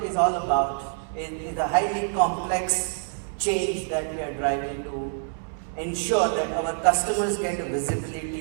is all about is a highly complex change that we are driving to ensure that our customers get a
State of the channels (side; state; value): left; silent; 61 dB below the other